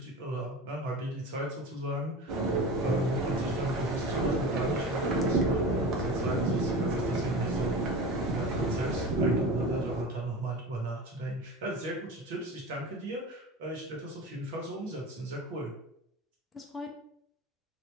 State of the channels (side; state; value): both; normal; correlation 0.31